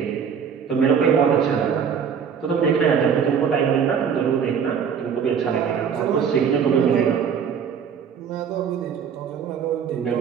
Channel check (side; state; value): left; quieter; 7.2 dB